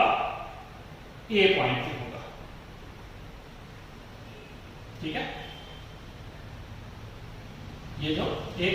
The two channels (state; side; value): identical; both; correlation 1.00